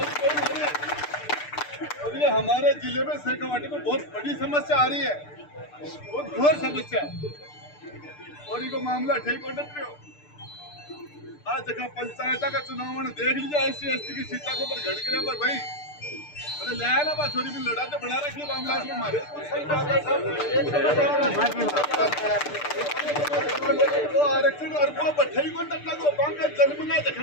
गोइंग हो रही है। और ये हमारे जिले में सहकावाटी में बहुत बड़ी समस्या आ रही है, बहुत घोर समस्या है और इनको मामला ठीक हो सकते हो। आज जगह पंचायत का चुनाव देख लीजिए, SC/ST की सीटा को पर घड़ के पर भाई अरे लाया ना बात छोरी भी लड़ा तो बना रखी मामला में मारे तो आरक्षण और को बठाई को टक्का को बैंक का जन्म ना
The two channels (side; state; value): right; late; 6.8 ms